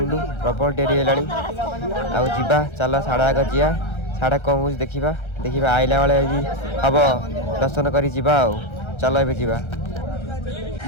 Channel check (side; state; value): right; late; 1.3 ms